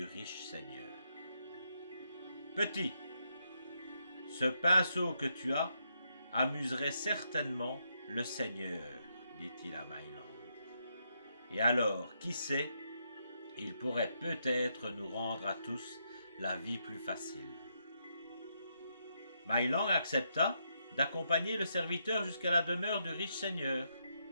riche seigneur. « Petit, ce pinceau que tu as amuserait certainement le seigneur, dit-il à My Lang. Et alors, qui sait, il pourrait peut-être nous rendre à tous la vie plus facile. » My Lang accepta d'accompagner le serviteur jusqu'à la demeure du riche seigneur.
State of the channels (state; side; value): inverted; both; correlation -0.79